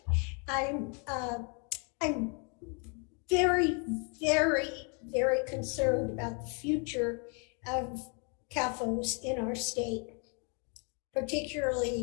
I'm very, very very concerned about the future of CAFOs in our state,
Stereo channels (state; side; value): quieter; right; 37.3 dB